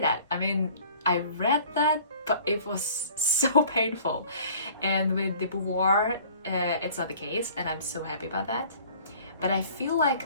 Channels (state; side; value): inverted; both; correlation -0.50